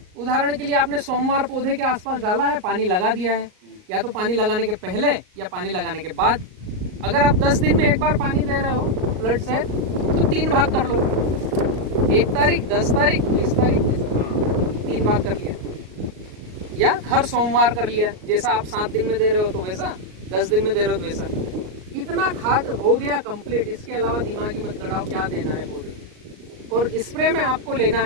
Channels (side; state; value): left; late; 38 ms